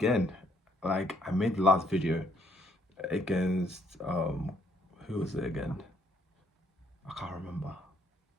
like I made the last video against who was it again? I can't remember.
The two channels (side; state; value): both; normal; correlation 0.68